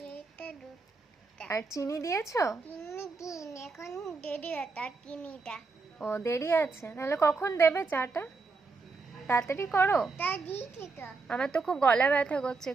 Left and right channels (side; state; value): left; quieter; 4.1 dB